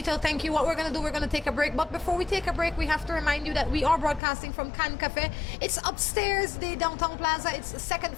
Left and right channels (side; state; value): right; drops out; at 4.2 s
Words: thank you. What we're going to do, we're going to take a break. But before we take a break, we have to remind you that we are broadcasting from Can Cafe. It's upstairs, the downtown plaza. It's the second